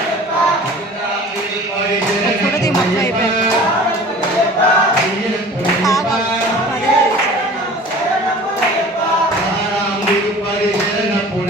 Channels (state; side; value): normal; both; correlation 0.43